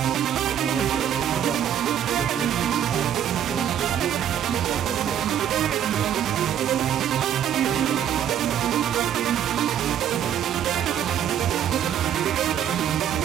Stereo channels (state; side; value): quieter; left; 9.7 dB